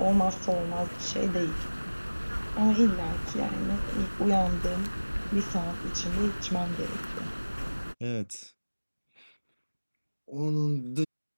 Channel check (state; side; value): inverted; both; correlation -1.00